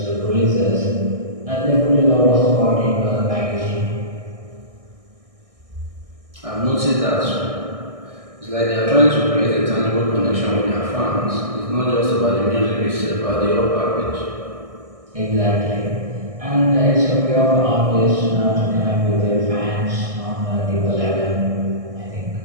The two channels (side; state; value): left; late; 1.6 ms